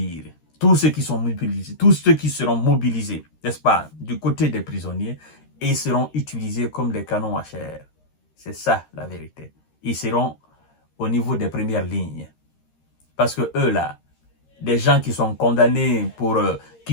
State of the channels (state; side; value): late; right; 13 ms